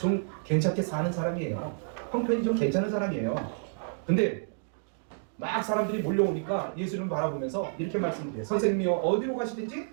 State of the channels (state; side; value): silent; left; digital silence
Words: 괜찮게 사는 사람이에요. 형편이 좀 괜찮은 사람이에요. 근데 막 사람들이 몰려오니까 예수님을 바라보면서 이렇게 말씀드려요. 선생님이요, 어디로 가시든지